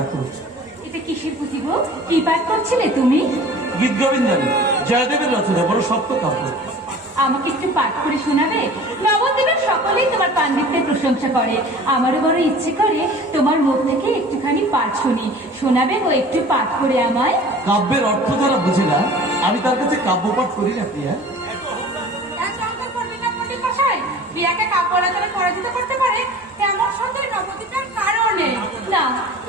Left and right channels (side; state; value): both; normal; correlation 0.43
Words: এটা কিসের পুঁথি গো? কি পাঠ করছিলে তুমি? গীত গোবিন্দানী, জয়দেবের রচনা, বড় শক্ত কাব্য। আমাকে একটু পাঠ করে শোনাবে? নবদ্বীপের সকলেই তোমার পাণ্ডিত্যের প্রশংসা করে, আমারও বড় ইচ্ছে করে তোমার মুখ থেকে একটুখানি পাঠ শুনি। শোনাবে গো একটু পাঠ করে আমায়? কাব্যের অর্থ যারা বুঝে না, আমি তার কাছে কাব্য পাঠ করি না প্রিয়া। বিয়াকে কাব্য রচনা পরাজিত করতে পারে এমন সন্দেহ নবদ্বীপের কারণে না।